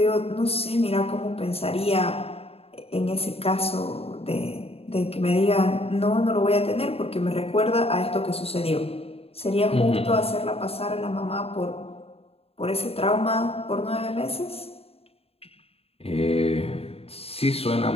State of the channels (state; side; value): late; right; 0.29 ms